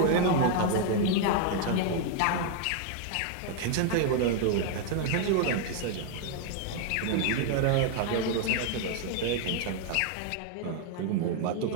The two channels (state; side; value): different; both; correlation 0.00